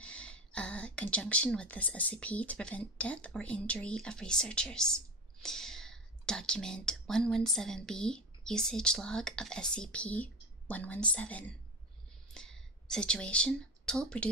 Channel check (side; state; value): both; normal; correlation 0.24